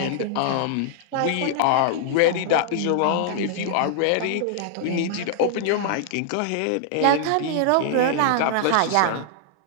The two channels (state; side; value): different; both; correlation -0.01